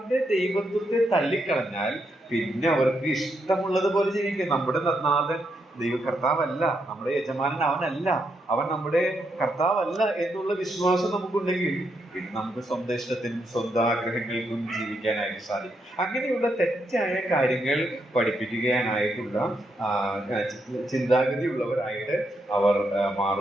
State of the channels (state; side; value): normal; both; correlation 0.80